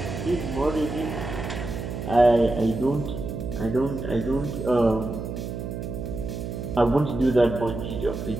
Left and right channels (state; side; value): noise; right; hum, 6 dB below the sound